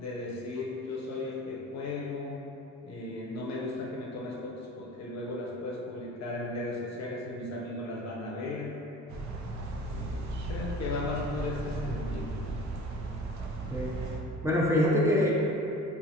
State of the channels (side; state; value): both; normal; correlation 0.42